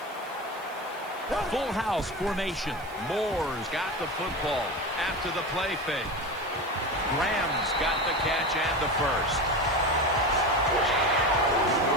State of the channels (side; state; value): right; noise; hiss, 23 dB below the sound